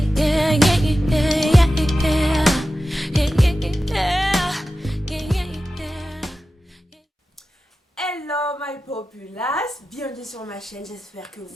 Hello my populace, bienvenue sur ma chaîne, j'espère que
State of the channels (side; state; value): both; normal; correlation 0.93